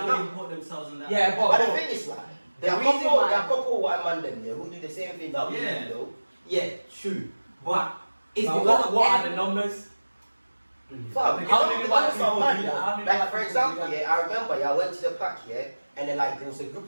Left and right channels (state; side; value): inverted; both; correlation -1.00